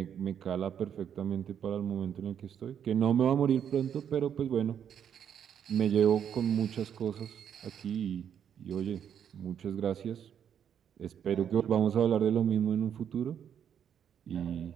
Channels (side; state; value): left; quieter; 8.7 dB